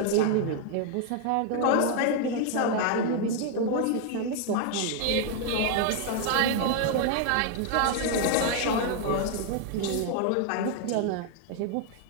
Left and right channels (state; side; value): different; both; correlation 0.00